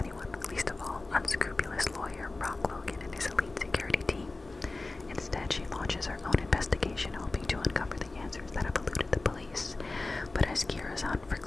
least of all unscrupulous lawyer Brock Logan and his elite security team. Instead, she launches her own investigation, hoping to uncover the answers that have eluded the police. But as Kira's hunt for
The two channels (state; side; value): quieter; right; 3.3 dB